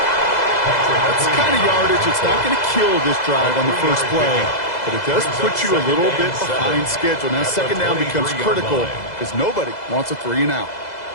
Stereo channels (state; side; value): late; right; 2.0 ms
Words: That's the kind of yardage. It's not going to kill this drive on the first play, but it does put you a little bit behind schedule. Now 2nd down becomes critical because nobody wants a 3 and out.